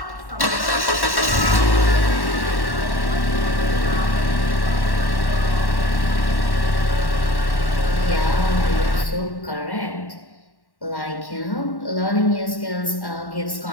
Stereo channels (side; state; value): right; late; 1.1 ms